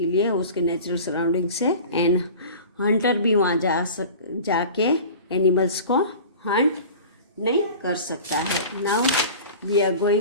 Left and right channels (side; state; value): both; inverted; correlation -0.39